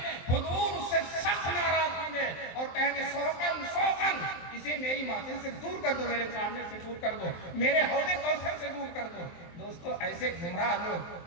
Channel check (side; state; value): right; late; 23 ms